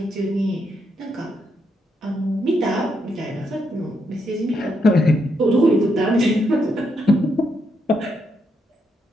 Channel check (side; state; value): both; normal; correlation 0.79